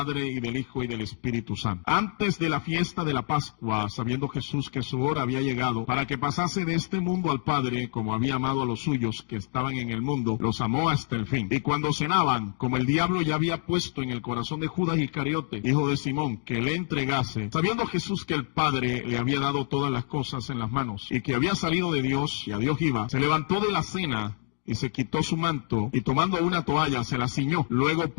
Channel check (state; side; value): silent; right; 60 dB below the other